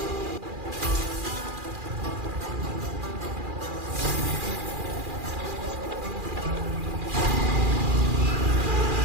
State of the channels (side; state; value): left; late; 2.4 ms